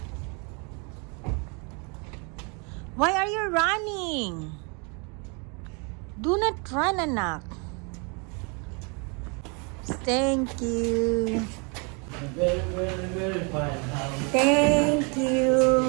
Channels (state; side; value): quieter; left; 33.8 dB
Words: Why are you running? Do not run, anak. Thank you. Very, very, very fine. Thank you.